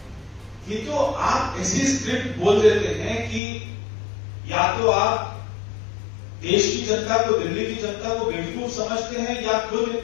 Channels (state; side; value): drops out; right; at 3.4 s